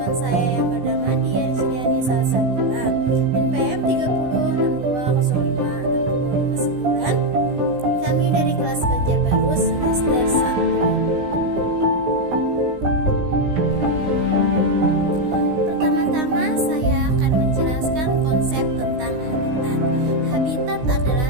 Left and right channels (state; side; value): late; left; 16 ms